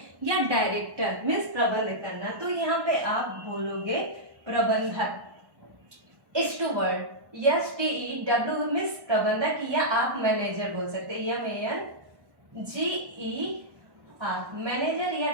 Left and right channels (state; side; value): late; left; 1.1 ms